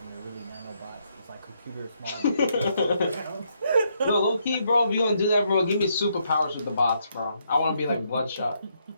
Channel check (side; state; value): both; inverted; correlation -0.76